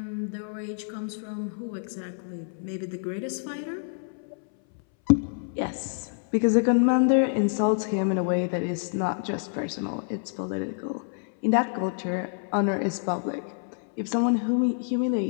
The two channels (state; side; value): silent; right; 60 dB below the other